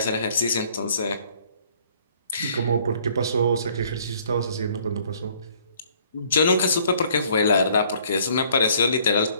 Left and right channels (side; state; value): both; inverted; correlation -0.60